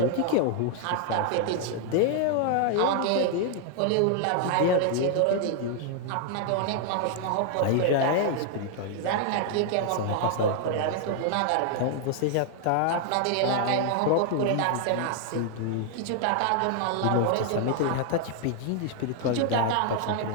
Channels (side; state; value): both; different; correlation 0.00